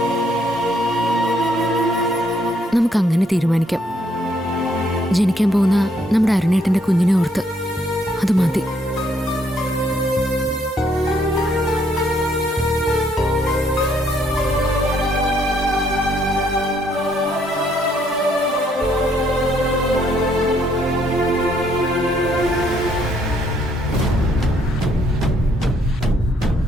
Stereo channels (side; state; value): both; normal; correlation 0.69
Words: നമുക്കങ്ങനെ തീരുമാനിക്കാം. ജനിക്കാൻ പോകുന്ന നമ്മുടെ അരുണേട്ടന്റെ കുഞ്ഞിനെ ഓർത്ത് അത് മതി.